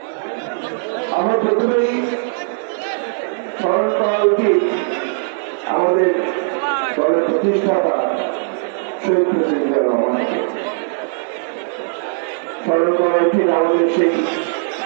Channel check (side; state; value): left; silent; digital silence